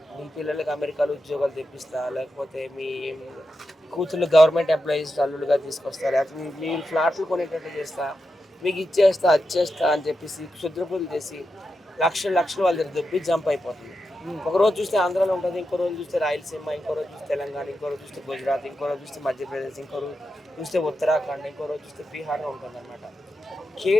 మీ పిల్లలకి అమెరికాలో ఉద్యోగాలు తెప్పిస్తా, లేకపోతే మీ కూతుళ్ళు గవర్నమెంట్ ఎంప్లాయీస్ అల్లులుగా తీసుకొస్తా, లేకపోతే మీరు ఫ్లాట్లు కొనేటట్టు చేస్తా, మీకు ఇచ్చేస్తా, అది చేస్తా అని చెప్పేసి క్షుద్రపూజలు చేసి లక్షలు లక్షలు వాళ్ళ దగ్గర దొబ్బి జంప్ అయిపోతుంది. ఒక రోజు చూస్తే ఆంధ్రాలో ఉంటుంది, ఇంకో రోజు చూస్తే రాయలసీమ, ఇంకో రోజు చూస్తే తెలంగాణ, ఇంకో రోజు చూస్తే గుజరాత్, ఇంకో రోజు చూస్తే మధ్యప్రదేశ్, ఇంకో రోజు చూస్తే ఉత్తరాఖండ్, ఇంకో రోజు చూస్తే బీహార్లో ఉంటుందన్నమాట.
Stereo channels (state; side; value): normal; both; correlation 0.88